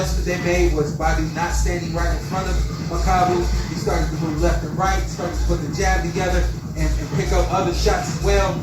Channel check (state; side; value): identical; both; correlation 1.00